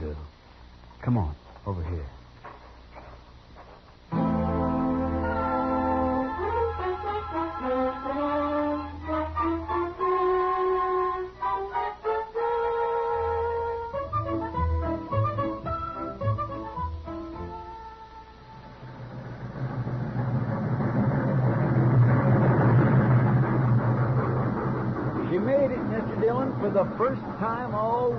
Come on, over here. For the first time all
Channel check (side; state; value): both; identical; correlation 1.00